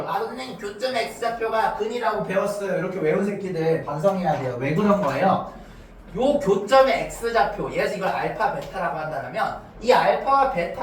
아, 선생님 교점 x좌표가 근이라고 배웠어요. 이렇게 외운 새끼들 반성해야 돼요. 왜 그런 거예요? 요 교점의 x좌표, 예를 들어서 이걸 알파 베타라고 한다면 이 알파와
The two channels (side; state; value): both; identical; correlation 1.00